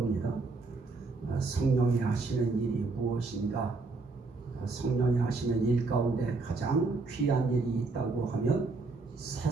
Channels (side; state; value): left; quieter; 3.8 dB